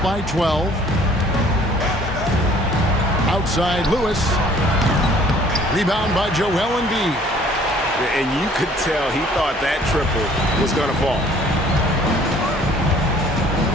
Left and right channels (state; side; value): normal; both; correlation 0.56